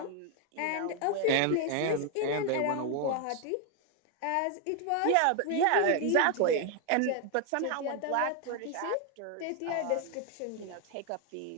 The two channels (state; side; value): different; both; correlation 0.01